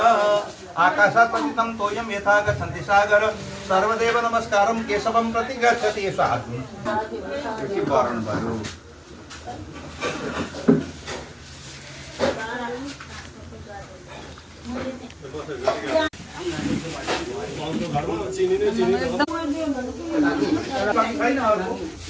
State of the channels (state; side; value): identical; both; correlation 1.00